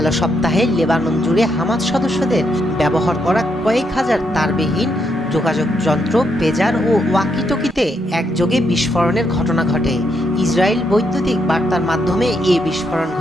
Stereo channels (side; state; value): both; normal; correlation 0.78